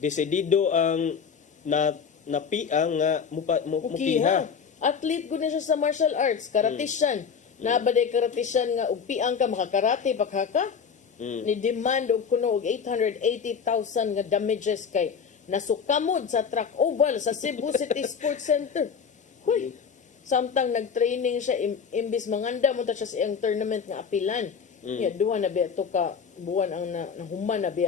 ang napiang nga mupiha. Athlete gud na siya sa martial arts, karatisyan. Nabaday karatisyan nga og piang ka makakarate paghaka. Ni demand og kuno og 880,000 nga damages kay nasukamod sa track oval sa Cebu City Sports Center. Hoy, samtang nag-training siya imbis manganda mo ta siya sa iyang tournament nga apilan. Ya duha na biya to ka buwan ang nahuman na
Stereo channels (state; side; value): quieter; right; 6.4 dB